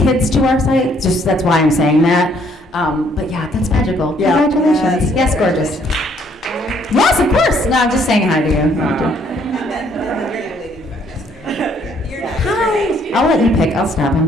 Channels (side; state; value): both; normal; correlation 0.65